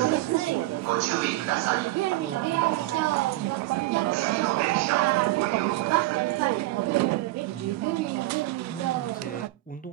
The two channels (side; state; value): left; quieter; 17.7 dB